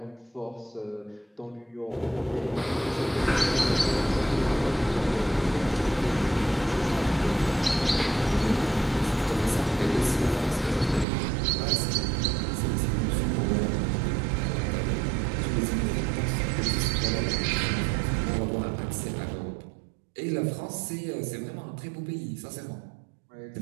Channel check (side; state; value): left; drops out; at 11.1 s